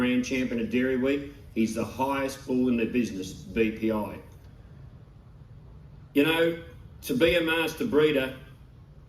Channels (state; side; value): identical; both; correlation 1.00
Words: champion at Dairy Week. He's the highest bull in the business, BPI. You know, to be a master breeder,